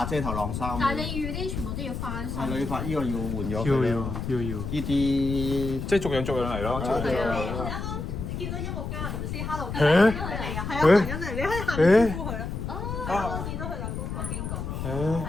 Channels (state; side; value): noise; left; rumble, 5 dB below the sound